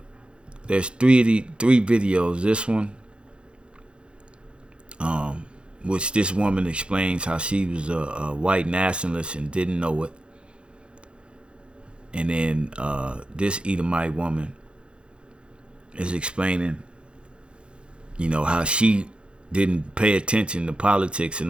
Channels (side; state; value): left; late; 0.056 ms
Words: three videos. This one, which this woman explains how she was a white nationalist and didn't know it. And then this Edomite woman is explaining, how she didn't pay attention to politics